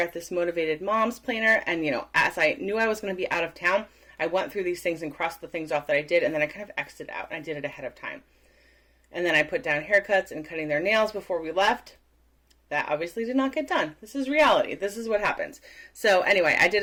this Motivated Moms planner. And, as I knew I was going to be out of town, I went through these things and crossed the things off that I did, and then I kind of X'd it out, and I did it ahead of time. And then I put down haircuts and cutting their nails before we left. That obviously did not get done. This is reality. This is what happens. So anyway, I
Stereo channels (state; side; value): identical; both; correlation 1.00